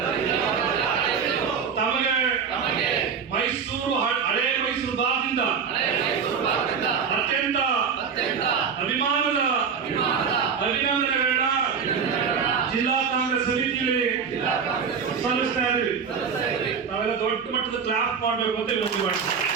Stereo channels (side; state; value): left; quieter; 6.4 dB